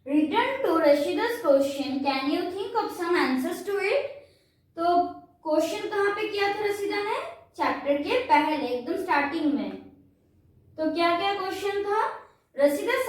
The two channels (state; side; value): identical; both; correlation 1.00